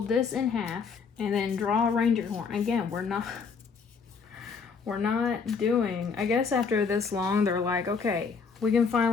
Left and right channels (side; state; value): right; quieter; 5.5 dB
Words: this in half and then draw a reindeer horn. Again, we're not doing, I guess after this long, they're like, okay, we can